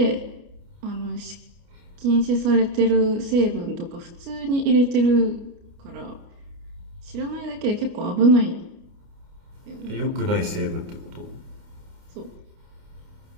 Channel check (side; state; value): left; late; 29 ms